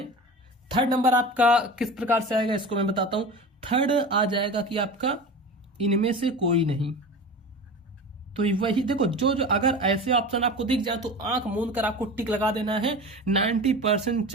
थर्ड नंबर आपका किस प्रकार से आएगा इसको मैं बताता हूं। थर्ड आ जाएगा कि आपका इनमें से कोई नहीं, तो वही देखो जो जो अगर ऐसे ऑप्शन आपको दिख जाए तो आंख मूंद कर आपको टिक लगा देना है। 90%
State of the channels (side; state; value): both; normal; correlation 0.32